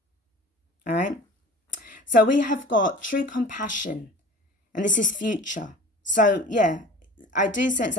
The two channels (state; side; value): normal; both; correlation 0.41